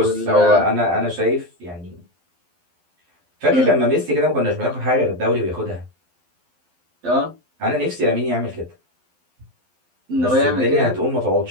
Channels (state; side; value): late; left; 12 ms